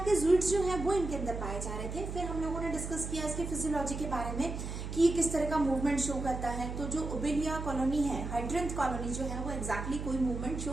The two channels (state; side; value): noise; right; hum, 6 dB below the sound